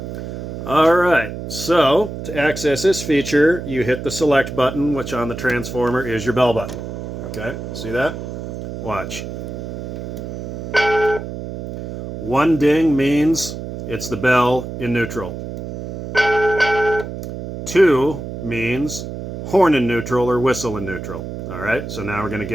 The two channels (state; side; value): noise; right; hum, 8 dB below the sound